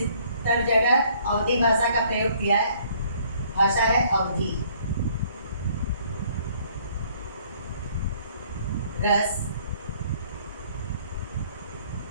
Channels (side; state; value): both; inverted; correlation -0.61